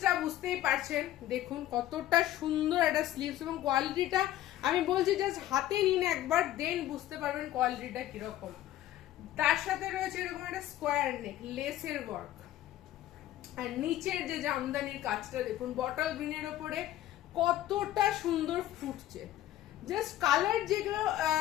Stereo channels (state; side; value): quieter; right; 13.6 dB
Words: বুঝতেই পারছেন দেখুন কতটা সুন্দর একটা স্লিভস, এবং কোয়ালিটিটা আমি বলছি জাস্ট হাতে নিন একবার, দেন বুঝতে পারবেন কোয়ালিটিটা কিরকম। তার সাথে রয়েছে এরকম একটা স্কোয়ার নেক, লেসের ওয়ার্ক, আর নিচের যে জামদানির কাজটা দেখুন বটল গ্রিনের ওপরে কতটা সুন্দর ফুটছে। জাস্ট কালার যেগুলো